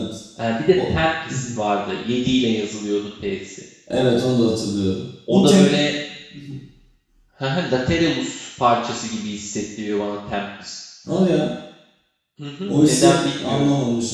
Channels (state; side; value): identical; both; correlation 1.00